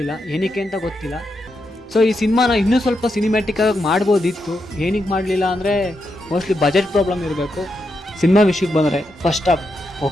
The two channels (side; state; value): both; normal; correlation 0.84